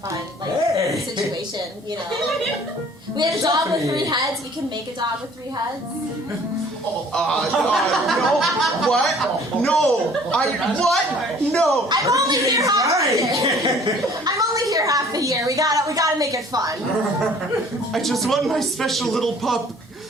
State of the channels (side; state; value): both; normal; correlation 0.53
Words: situation, you know. We had a dog with 3 heads. We can make a dog with 3 heads. No. What? No. What? No. I'm only here half the year. I'm only here half the year. We gotta make it fun. I just want my special little pup.